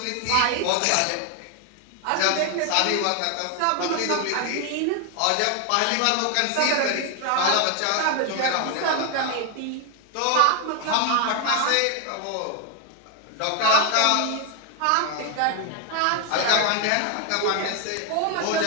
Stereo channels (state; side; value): different; both; correlation 0.01